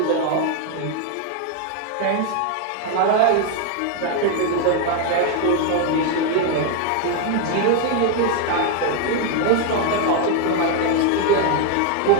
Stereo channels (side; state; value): both; different; correlation 0.01